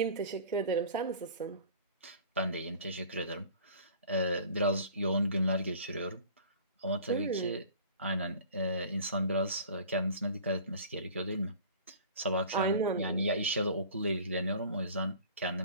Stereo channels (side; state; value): both; inverted; correlation -0.46